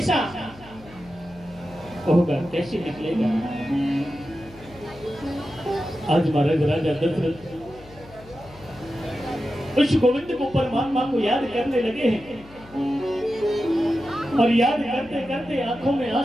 होगा, कैसे निकलेगा। आज महाराज राजा दशरथ उस गोविंद को परमात्मा को याद करने लगे हैं और याद करते करते आंखों में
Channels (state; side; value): noise; left; hum, 22 dB below the sound